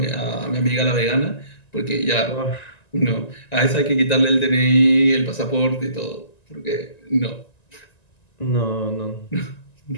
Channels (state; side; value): late; right; 1.9 ms